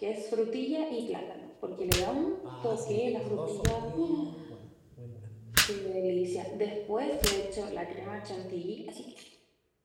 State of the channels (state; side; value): identical; both; correlation 1.00